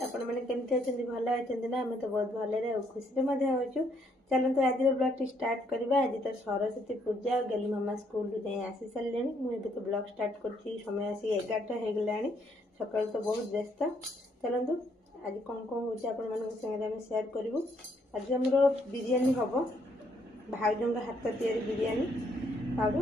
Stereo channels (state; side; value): normal; both; correlation 0.70